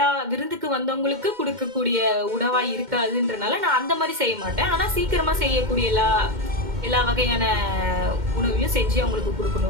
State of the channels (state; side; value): late; left; 2.1 ms